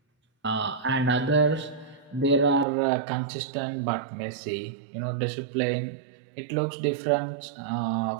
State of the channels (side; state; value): left; drops out; at 2.7 s